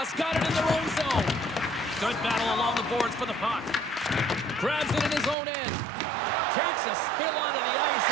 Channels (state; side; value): drops out; left; at 5.4 s